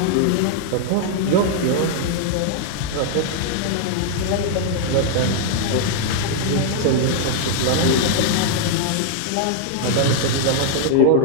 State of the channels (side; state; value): both; different; correlation -0.01